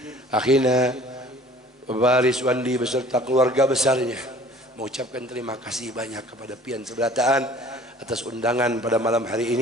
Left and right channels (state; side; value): normal; both; correlation 0.50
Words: akhina Baris Wandi beserta keluarga besarnya mengucapkan terima kasih banyak kepada pian seberataan atas undangan pada malam hari